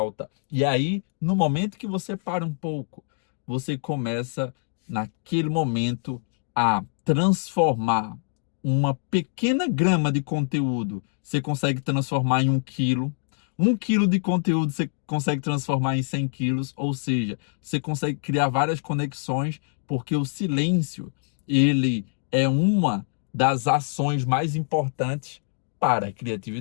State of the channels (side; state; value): right; silent; digital silence